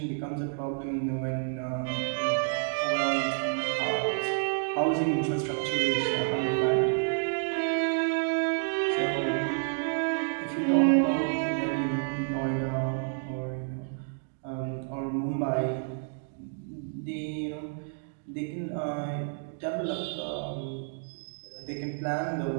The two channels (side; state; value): left; silent; digital silence